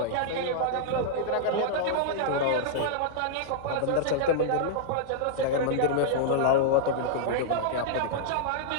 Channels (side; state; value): both; different; correlation -0.02